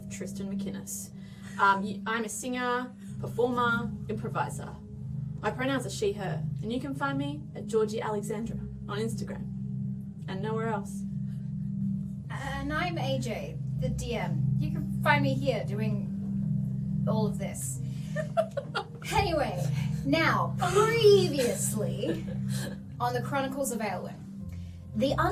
Tristan McInnes. I'm a singer, performer, improviser. My pronouns are she, her, and you can find me at Georgie Alexandra on Instagram and nowhere else. And I'm AJ, the DM. You can find me here doing all of this. Anyway, now, previously on the Chronicles of Aelwyn, the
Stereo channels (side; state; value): both; identical; correlation 1.00